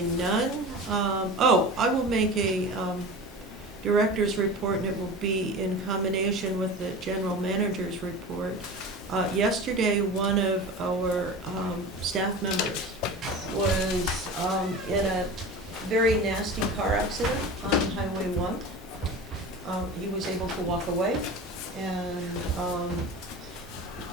none. I will make a director's report, and it will be in combination with the general manager's report. Yesterday, one of our staff members was in a very nasty car accident on Highway 1. He was able to walk away, and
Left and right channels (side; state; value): both; normal; correlation 0.33